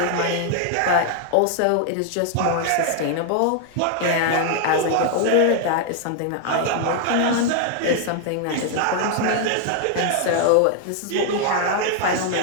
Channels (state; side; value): different; both; correlation 0.00